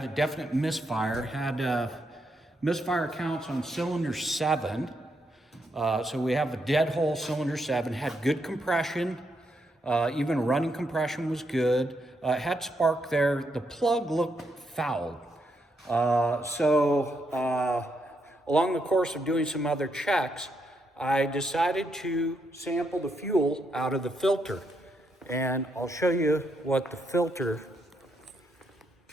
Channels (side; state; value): both; normal; correlation 0.79